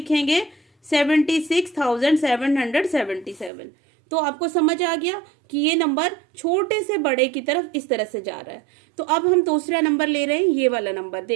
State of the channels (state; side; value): drops out; left; at 3.5 s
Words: 76,777। तो आपको समझ आ गया कि ये नंबर छोटे से बड़े की तरफ इस तरह से जा रहा है। तो अब हम दूसरा नंबर ले रहे हैं, ये वाला नंबर।